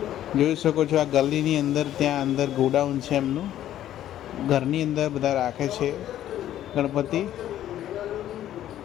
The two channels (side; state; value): right; quieter; 12.2 dB